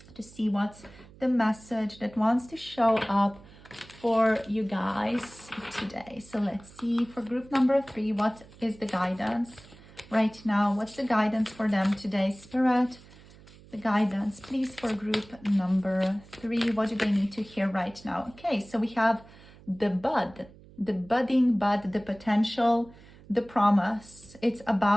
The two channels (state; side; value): noise; right; hum, 22 dB below the sound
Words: to see what's the message that wants to show up for you guys today. So let's see for group number 3, what is the guidance right now? What's the guidance for them today, Spirit? The guidance, please, for group number 3. What do they need to hear right now? Okay, so we have the bud, the budding bud, the potential, the promise. It's